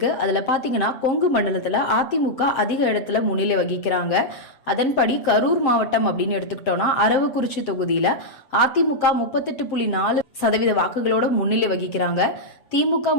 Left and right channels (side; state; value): right; late; 7.7 ms